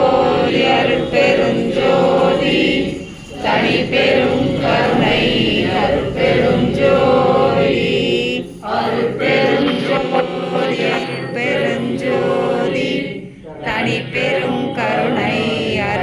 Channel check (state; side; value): identical; both; correlation 1.00